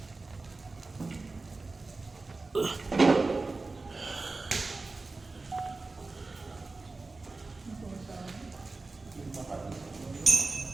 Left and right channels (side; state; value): left; quieter; 3.6 dB